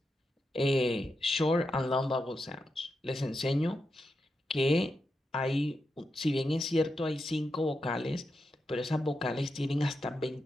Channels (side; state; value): both; normal; correlation 0.87